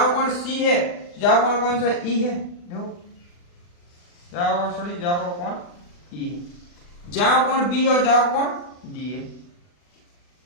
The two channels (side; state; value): right; late; 40 ms